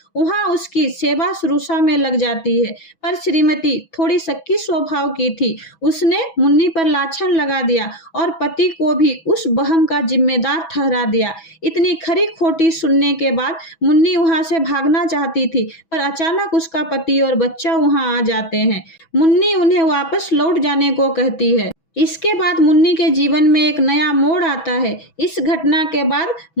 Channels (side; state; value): right; late; 6.1 ms